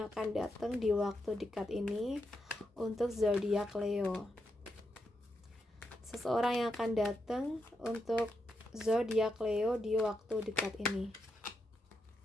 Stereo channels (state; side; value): normal; both; correlation 0.84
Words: akan datang di waktu dekat ini untuk zodiak Leo. Seseorang yang akan datang untuk zodiak Leo di waktu dekat ini.